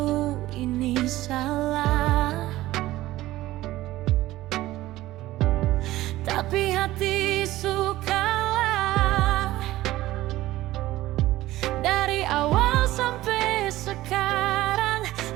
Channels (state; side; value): quieter; left; 16.3 dB